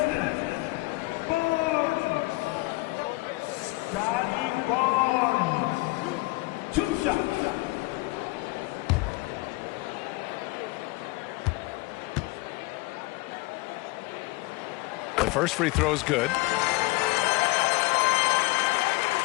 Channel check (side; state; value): right; quieter; 22.2 dB